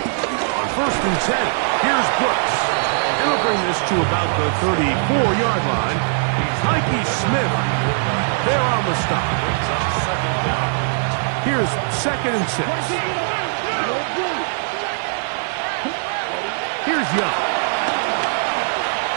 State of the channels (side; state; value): left; silent; 63 dB below the other